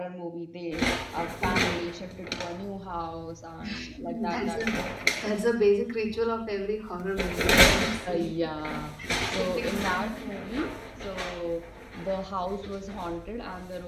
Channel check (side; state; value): both; identical; correlation 1.00